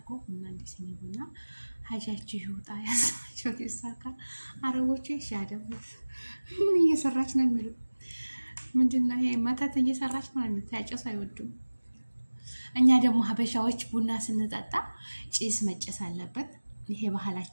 ቡና እንዲስኒ ቡና ሀጃችሁ ይውጣ። ያሰባችሁት ይሳካ። አረቦቹ ይሻደቡት። ምን እየሰራች ነው የሚሉት? ምንድነው ይሄ? መተት እየሰራች ነው የሚሉት። ያጨሱ አይወዱም። እኛ ደግሞ ሀበሻዎች ቡና ስንጠጣ ጭስ መጨስ አለበት። ይሄ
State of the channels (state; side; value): inverted; both; correlation -1.00